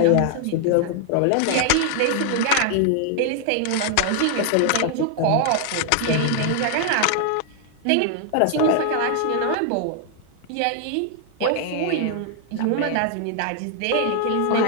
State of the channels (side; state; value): both; different; correlation 0.00